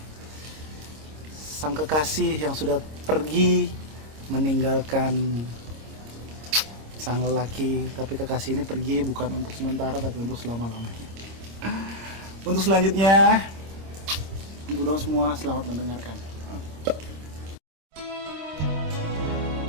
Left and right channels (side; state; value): left; late; 26 ms